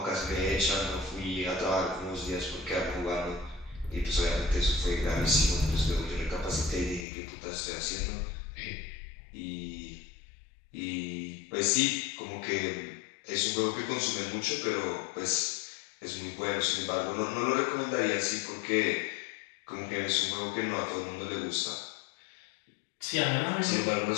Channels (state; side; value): drops out; right; at 7.1 s